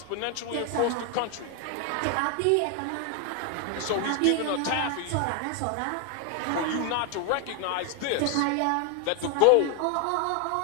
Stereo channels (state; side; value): different; both; correlation 0.00